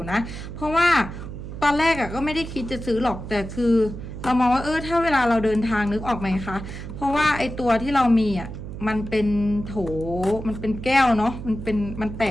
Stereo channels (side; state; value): right; noise; hum, 9 dB below the sound